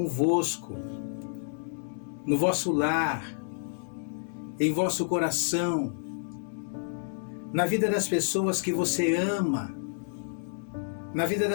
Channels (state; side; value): silent; right; digital silence